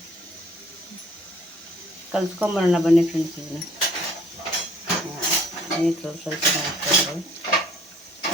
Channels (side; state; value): both; normal; correlation 0.57